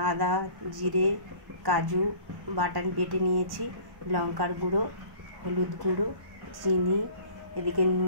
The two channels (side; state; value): left; late; 1.1 ms